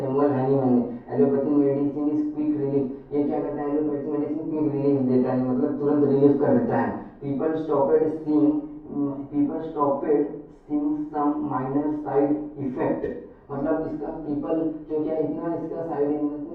हैनीमैन ने। Allopathic medicine is quick relief, ये क्या करता है एलोपैथिक मेडिसिन क्विक रिलीफ देता है, मतलब तुरंत रिलीफ कर देता है। People stopped seeing some minor side effect, मतलब इसका पीपल जो क्या इतना इसका साइड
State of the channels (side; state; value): both; identical; correlation 1.00